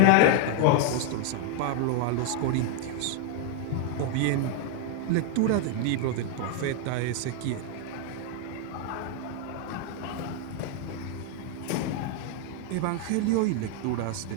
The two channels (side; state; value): both; different; correlation 0.00